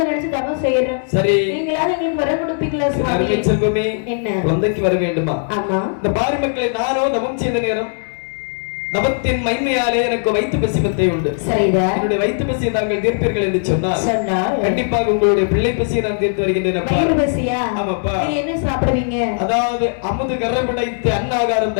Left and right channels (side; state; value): right; silent; digital silence